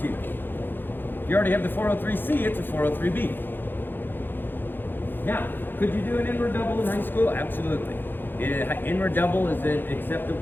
If you already have the 403C, it's a 403B. Now, could you do an inward double in high school? Absolutely. Inward double is an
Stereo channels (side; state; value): right; late; 0.097 ms